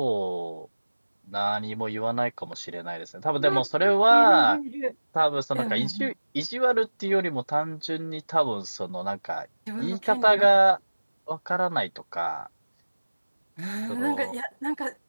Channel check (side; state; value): both; inverted; correlation -1.00